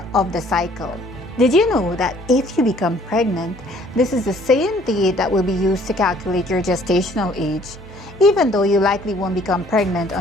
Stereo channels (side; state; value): both; normal; correlation 0.59